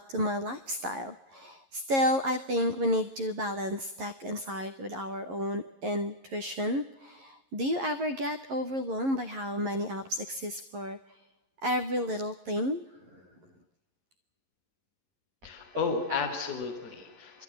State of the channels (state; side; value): late; left; 11 ms